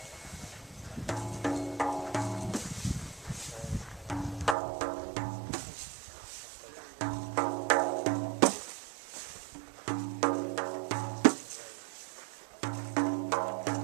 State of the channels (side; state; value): left; drops out; at 4.5 s